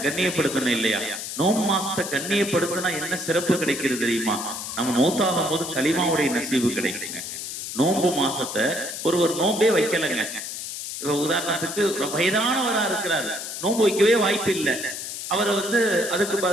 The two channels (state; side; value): noise; left; hiss, 7 dB below the sound